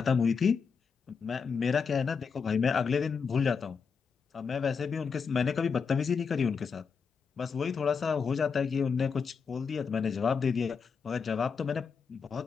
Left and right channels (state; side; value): quieter; right; 5.8 dB